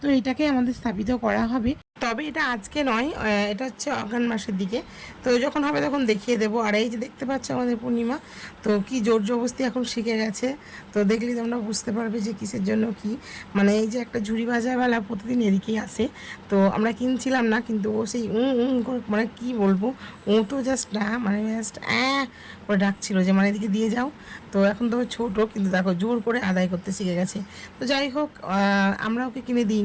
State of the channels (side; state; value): both; identical; correlation 1.00